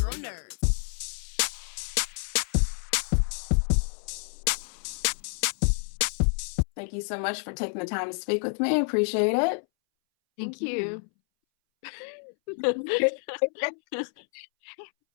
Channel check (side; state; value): right; silent; 59 dB below the other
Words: nerds. Thank you so much for taking the time to speak with me. I appreciate it. Thank you.